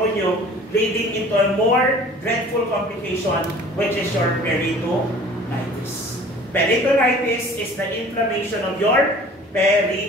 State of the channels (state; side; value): normal; both; correlation 0.47